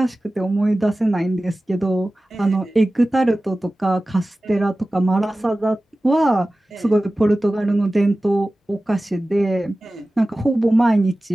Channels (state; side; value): normal; both; correlation 0.96